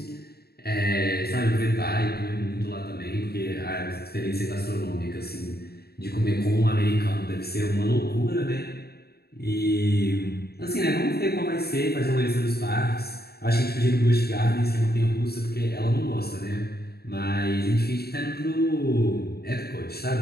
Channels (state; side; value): late; right; 0.46 ms